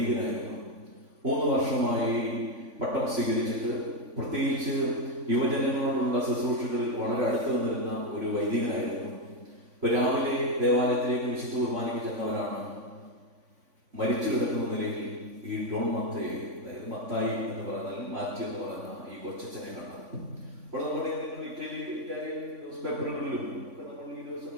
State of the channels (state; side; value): late; left; 3.5 ms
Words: 3 വർഷമായി പട്ടം സ്വീകരിച്ചിട്ട് പ്രത്യേകിച്ച് യുവജനങ്ങളോടുള്ള ശുശ്രൂഷകളിൽ വളരെ അടുത്ത് നിന്നിരുന്ന ഒരു വൈദികനായിരുന്നു. ഇപ്പൊ രാവിലെ ദേവാലയത്തിലേക്ക് വിശുദ്ധ കുർബാനയ്ക്ക് ചെന്നവരാണ് മരിച്ചു കിടക്കുന്ന നിലയിൽ ഈ ഡോൺ മത്തയെ, അതായത് മത്തായി എന്ന് പറഞ്ഞാൽ മാത്യു എന്ന് പറയുന്ന ഈ കൊച്ചനെ കണ്ടത്. അപ്പോൾ നമ്മുടെ ഇറ്റാലിയൻ ന്യൂസ് പേപ്പറുകളിലും ഒക്കെ നമ്മൾ ഈ ദിവസം